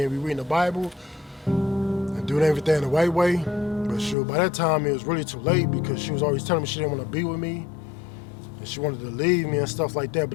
we reading the Bible and doing everything the right way. But sure, by that time it was really too late, because she was always telling me she didn't want to be with me, and she wanted to leave me and stuff like that.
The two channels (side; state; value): right; drops out; at 4.2 s